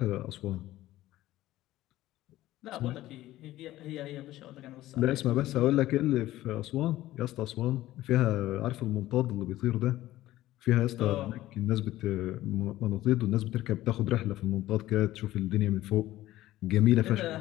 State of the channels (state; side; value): quieter; right; 15.4 dB